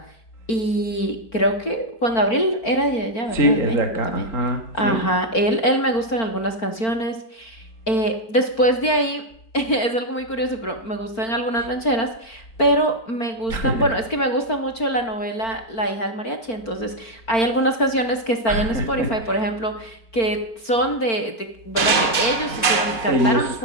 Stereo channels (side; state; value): right; late; 4.4 ms